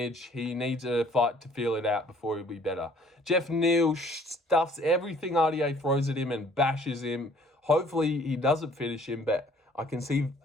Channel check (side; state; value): both; normal; correlation 0.57